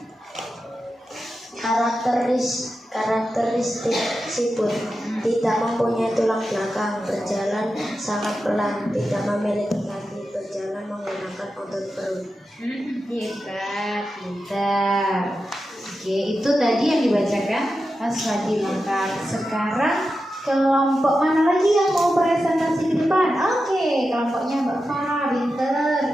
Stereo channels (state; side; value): normal; both; correlation 0.91